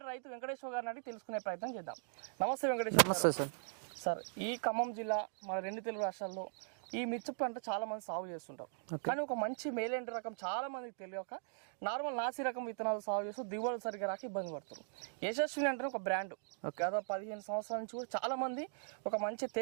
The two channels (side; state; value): left; silent; digital silence